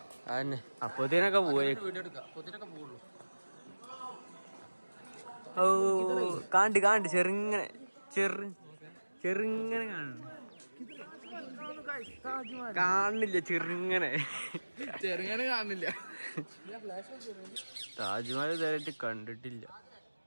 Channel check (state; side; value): inverted; both; correlation -1.00